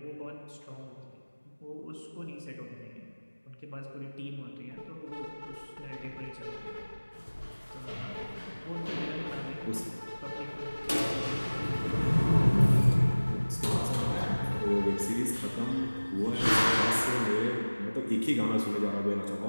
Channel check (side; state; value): both; inverted; correlation -1.00